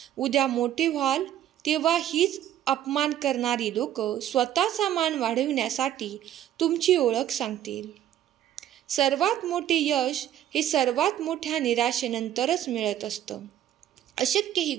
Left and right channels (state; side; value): quieter; left; 11.5 dB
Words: उद्या मोठे व्हाल तेव्हा हीच अपमान करणारी लोक स्वतःचा मान वाढविण्यासाठी तुमची ओळख सांगतील. सर्वात मोठे यश हे सर्वात मोठ्या निराशेनंतरच मिळत असतं. अशक्य ही